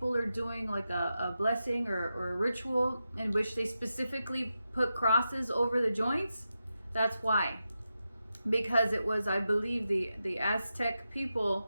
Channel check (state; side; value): inverted; both; correlation -0.90